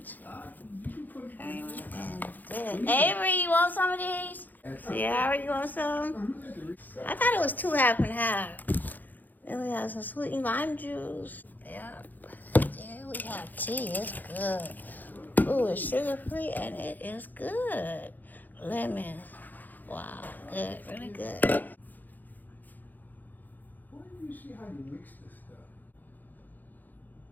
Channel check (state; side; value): late; right; 0.085 ms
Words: Okay, and good. Avery, you want some of these? Sierra, you want some? I thought it was 2 half and half. Then we have some sweet lime juice. Yep. Then we have tea. It's good. Ooh, it's sugar free and it is good. Lemon. Wow, good, really good. Why do you see how you mix this stuff?